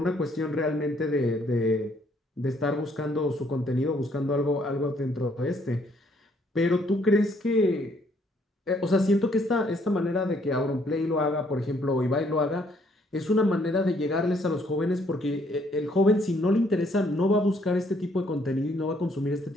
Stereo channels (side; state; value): both; normal; correlation 0.67